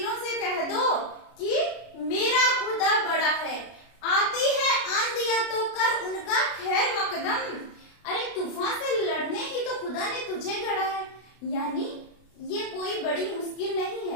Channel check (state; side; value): late; right; 32 ms